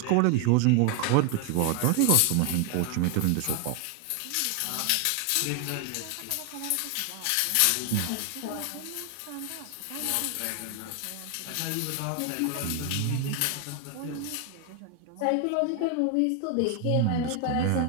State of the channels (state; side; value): different; both; correlation 0.01